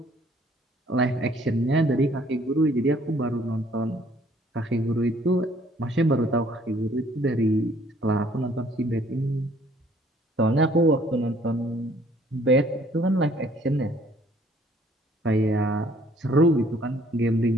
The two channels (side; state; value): both; normal; correlation 0.60